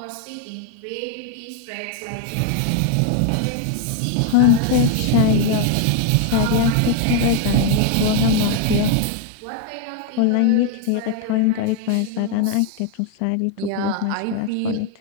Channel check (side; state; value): both; different; correlation 0.01